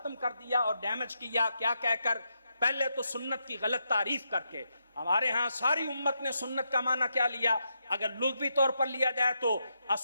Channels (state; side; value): inverted; both; correlation -0.82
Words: کر دیا اور ڈیمیج کیا. کیا کہہ کر؟ پہلے تو سنت کی غلط تعریف کر کے. ہمارے ہاں ساری امت نے سنت کا معنی کیا لیا؟ اگر لغوی طور پر لیا جائے تو